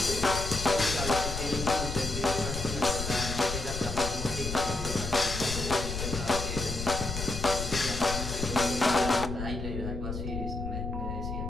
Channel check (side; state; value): left; noise; rumble, 5 dB below the sound